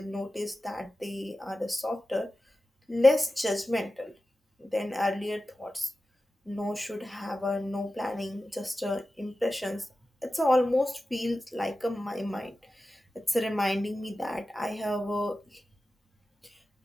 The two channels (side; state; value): both; normal; correlation 0.94